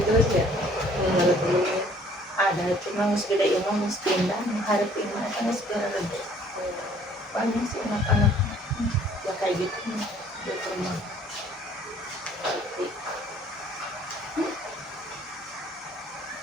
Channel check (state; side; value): normal; both; correlation 0.57